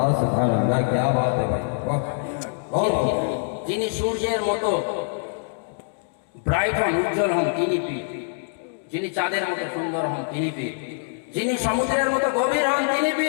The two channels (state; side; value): silent; right; digital silence